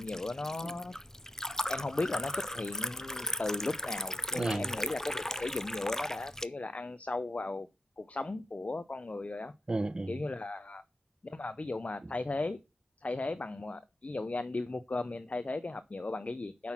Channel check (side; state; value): both; normal; correlation 0.84